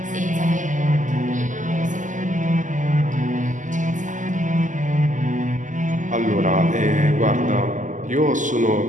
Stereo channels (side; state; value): left; late; 0.37 ms